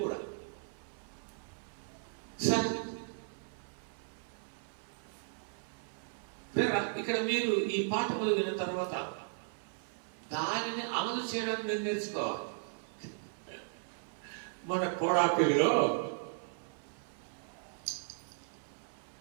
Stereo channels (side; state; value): left; silent; 54 dB below the other